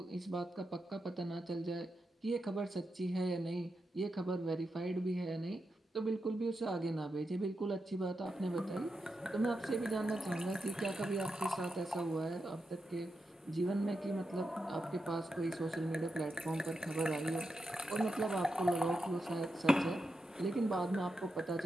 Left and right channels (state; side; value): normal; both; correlation 0.87